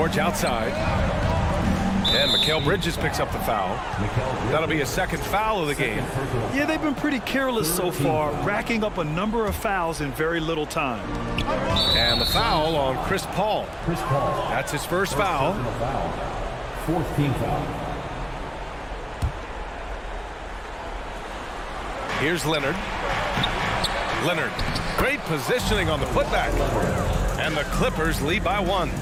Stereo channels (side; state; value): both; identical; correlation 1.00